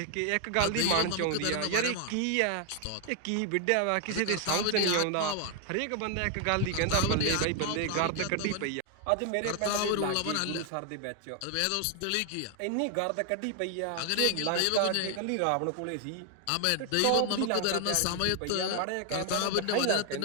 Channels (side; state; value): both; different; correlation 0.00